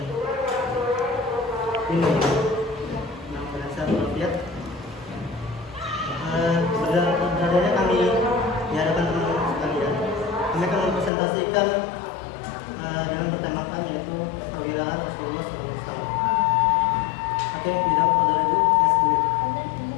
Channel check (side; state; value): right; drops out; at 11.1 s